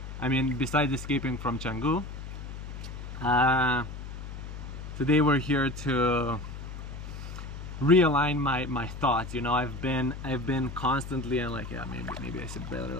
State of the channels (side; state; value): left; noise; hum, 9 dB below the sound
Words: I mean, besides escaping from Changu, today we're here to realign my thoughts. You know, I've been constantly, and like, yeah, maybe I said better